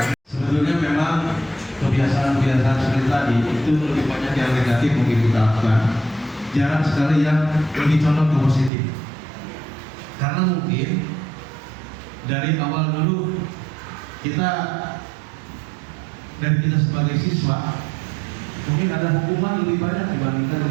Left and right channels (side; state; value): left; drops out; at 8.7 s